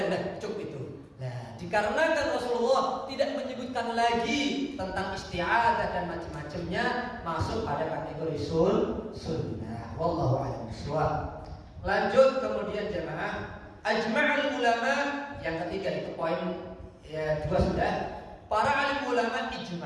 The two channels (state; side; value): identical; both; correlation 1.00